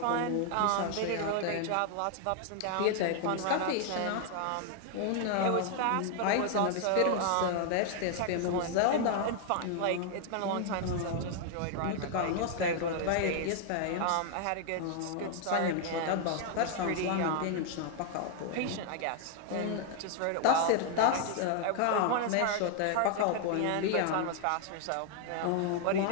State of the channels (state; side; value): different; both; correlation 0.00